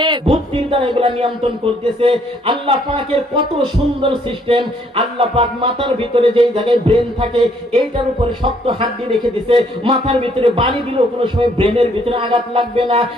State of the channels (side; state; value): both; normal; correlation 0.66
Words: বুদ্ধির দ্বারা এগুলা নিয়ন্ত্রণ করতেছে। আল্লাহ পাকের কত সুন্দর সিস্টেম। আল্লাহ পাক মাথার ভিতরে যেই জায়গায় ব্রেন থাকে এইটার উপরে শক্ত হাড্ডি রেখে দিছে, মাথার ভিতরে বাড়ি দিলেও কোনো সময় ব্রেনের ভিতরে আঘাত লাগবে না,